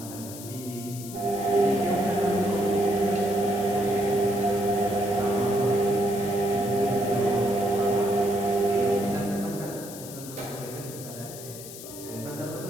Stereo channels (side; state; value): left; noise; hiss, 13 dB below the sound